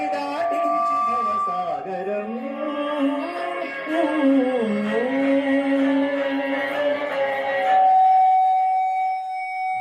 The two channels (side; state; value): both; identical; correlation 1.00